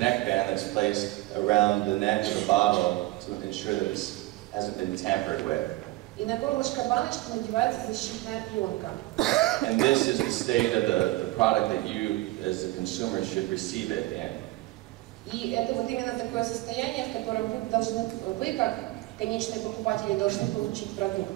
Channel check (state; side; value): quieter; left; 19.1 dB